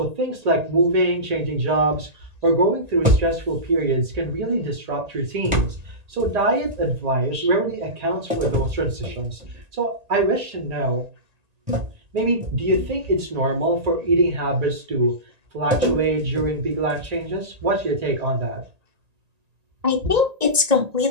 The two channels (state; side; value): late; left; 1.9 ms